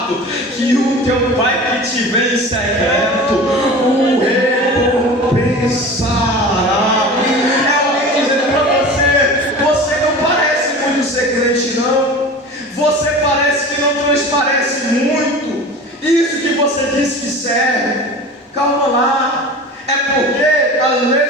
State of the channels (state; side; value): normal; both; correlation 0.35